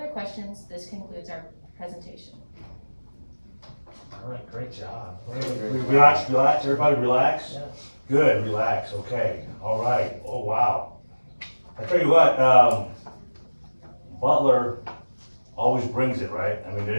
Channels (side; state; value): both; inverted; correlation -1.00